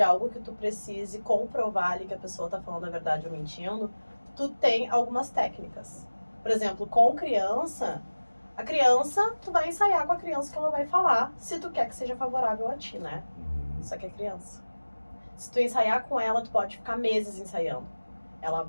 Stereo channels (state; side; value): inverted; both; correlation -1.00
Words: algo que tu precise comprovar ali que a pessoa tá falando a verdade ou mentindo, tu tem algumas técnicas. Por exemplo, com criança, a criança, tu vai ensaiar com a criança que ela vai falar, se tu quer que seja favorável a ti, né? Isso aqui é criança. Se tu ensaiar com ela, tu pode ficar meses ensaiando. Ela